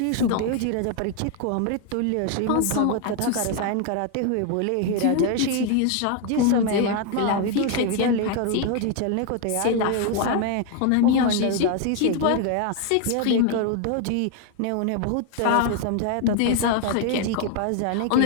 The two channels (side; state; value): both; different; correlation 0.01